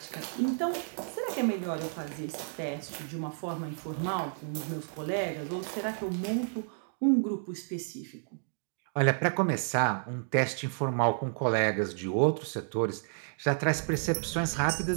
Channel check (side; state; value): left; silent; digital silence